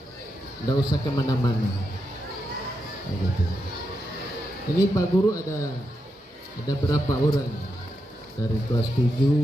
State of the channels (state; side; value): normal; both; correlation 0.85